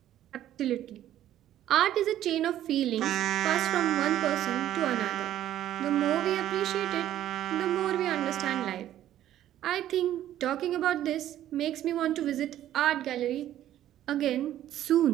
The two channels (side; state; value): left; quieter; 12.3 dB